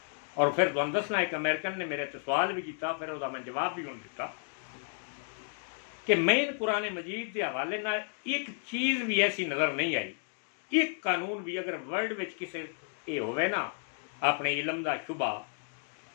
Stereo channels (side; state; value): right; silent; 56 dB below the other